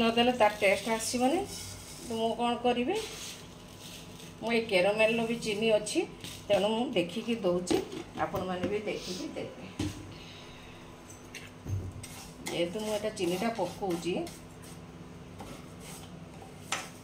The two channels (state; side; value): identical; both; correlation 1.00